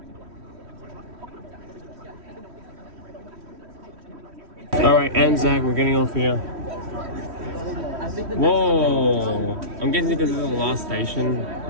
Alright, Anzac, we're getting off here. Whoa! I'm guessing because this is the last station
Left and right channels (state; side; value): late; left; 3.1 ms